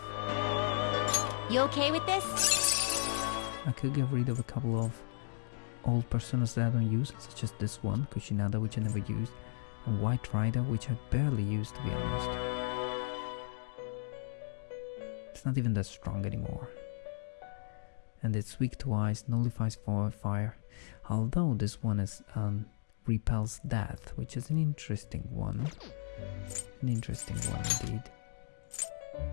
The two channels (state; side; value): silent; right; digital silence